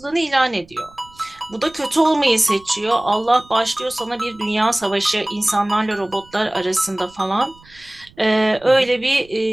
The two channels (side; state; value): right; noise; rumble, 27 dB below the sound